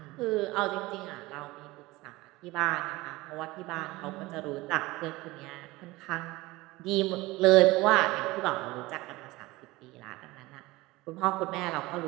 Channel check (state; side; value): quieter; left; 20.3 dB